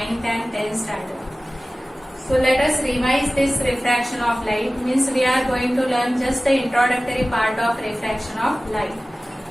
and 10th standard. So let us revise this refraction of light, means we are going to learn just the introductory part of refraction of light.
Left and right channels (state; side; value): normal; both; correlation 0.97